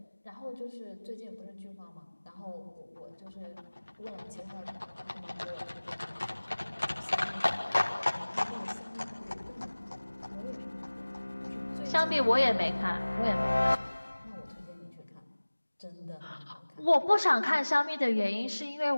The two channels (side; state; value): both; inverted; correlation -1.00